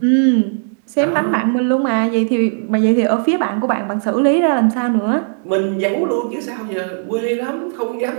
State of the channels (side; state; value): left; silent; digital silence